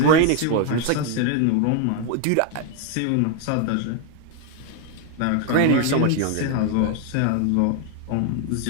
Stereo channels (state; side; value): different; both; correlation 0.01